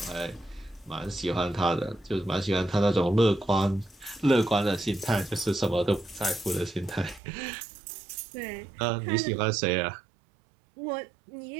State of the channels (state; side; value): drops out; left; at 7.2 s